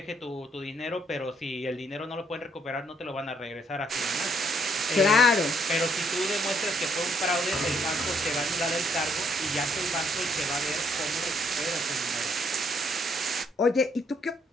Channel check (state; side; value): normal; both; correlation 0.70